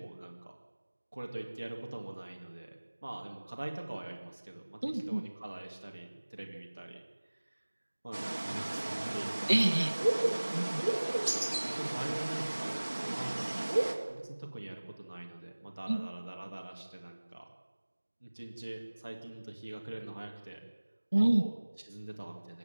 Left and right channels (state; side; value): inverted; both; correlation -1.00